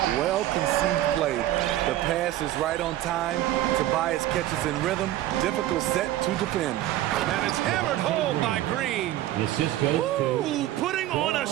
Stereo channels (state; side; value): quieter; left; 14.1 dB